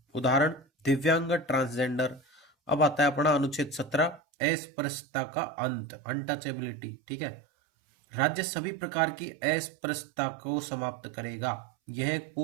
उदाहरण, दिव्यांग, ट्रांसजेंडर। अब आता है अपना अनुच्छेद 17, अस्पृश्यता का अंत, अनटचेबिलिटी। ठीक है, राज्य सभी प्रकार की अस्पृश्यता को समाप्त करेगा। यह एक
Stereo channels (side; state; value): left; drops out; at 4.2 s